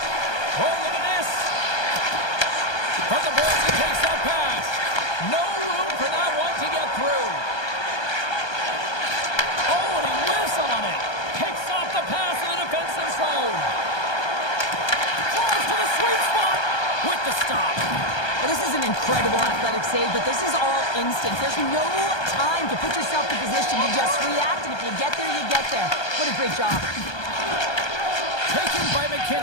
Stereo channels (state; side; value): late; right; 1.2 ms